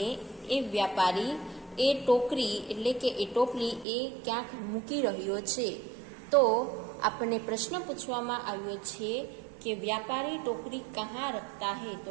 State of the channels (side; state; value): left; drops out; at 3.9 s